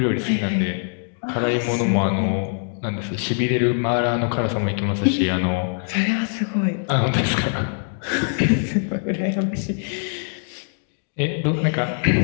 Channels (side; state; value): right; silent; digital silence